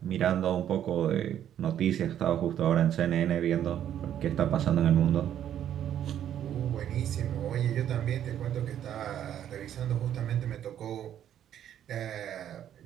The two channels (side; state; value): left; quieter; 10.4 dB